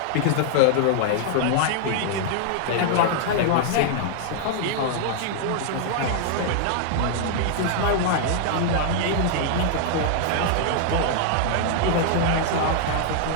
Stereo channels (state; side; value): different; both; correlation -0.01